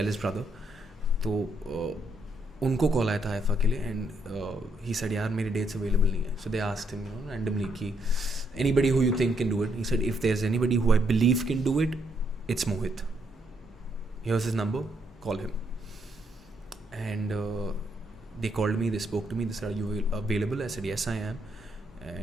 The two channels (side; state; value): both; normal; correlation 0.74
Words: brother. तो उनको call आया था IIFA के लिए, and he said यार मेरे dates available नहीं है. So they asked him, randomly कि anybody who you think can do it. He said if there's anybody who I believe can do it, it's Mohit. Here's his number, call him. And they called me, they spoke to me, they said, are you available? I said yes I am.